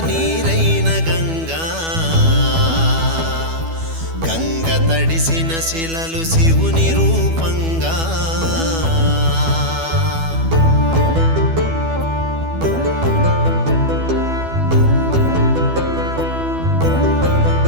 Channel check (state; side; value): late; left; 12 ms